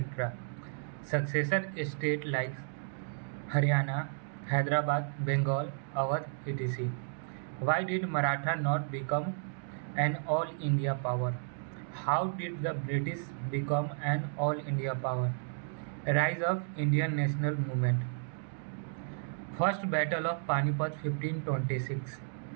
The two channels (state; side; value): silent; left; digital silence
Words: Successor states like Haryana, Hyderabad, Bengal, Awadh, etc. Why did Maratha not become an all India power? How did the British become an all India power? Rise of Indian national movement. First Battle of Panipat 1526.